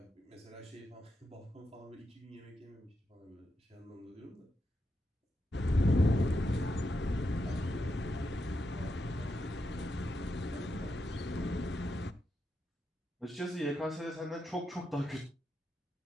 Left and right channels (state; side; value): normal; both; correlation 0.85